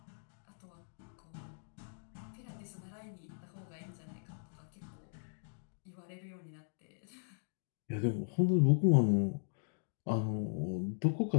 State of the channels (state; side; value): silent; right; digital silence